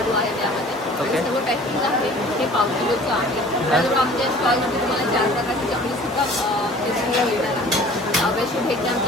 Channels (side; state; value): both; normal; correlation 0.48